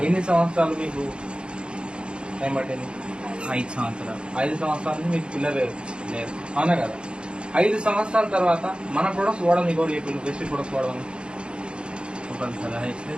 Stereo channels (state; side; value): late; left; 0.054 ms